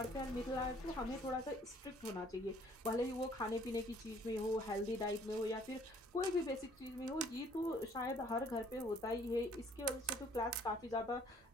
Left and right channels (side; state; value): both; normal; correlation 0.59